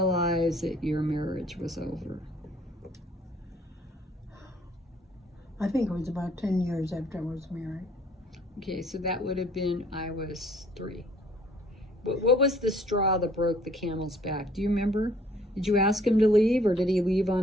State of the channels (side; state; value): both; normal; correlation 0.59